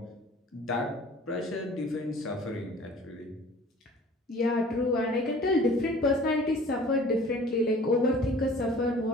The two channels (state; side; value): normal; both; correlation 0.48